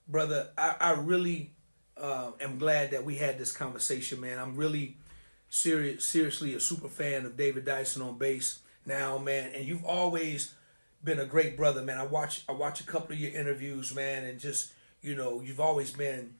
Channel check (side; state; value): both; inverted; correlation -1.00